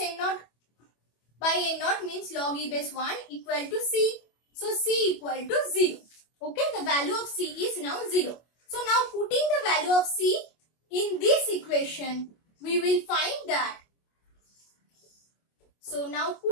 naught by n naught means log e base 1 equal to c. So c equal to 0. Okay, the value of c is now 0. So now putting the value of c in this equation, we will find that. So now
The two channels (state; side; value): late; right; 25 ms